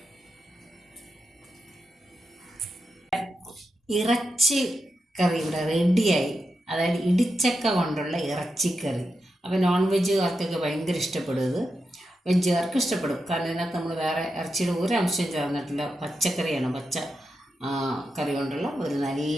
ഇറച്ചി കറി ഇവിടെ റെഡിയായി. അതായത് ഇടിച്ചക്ക കൊണ്ടുള്ള ഇറച്ചിക്കറി. അപ്പോൾ നോൺ വെജുകാർക്കൊക്കെ ഭയങ്കര ഇഷ്ടപ്പെടും. ഇത് വെജുകാർക്ക് ഇഷ്ടപ്പെടും. കാരണം ഇതിനകത്ത് നമ്മൾ വേറെ ഇറച്ചിയുടെ ഒരു അംശം ചേർന്നിട്ടില്ല. പച്ചക്കറിയാണ്. പച്ച കറി കൊണ്ടുള്ള ഒരു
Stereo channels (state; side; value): normal; both; correlation 0.87